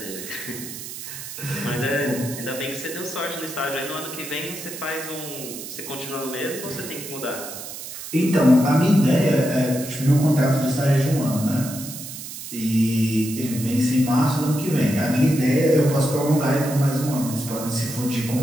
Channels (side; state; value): right; noise; hiss, 10 dB below the sound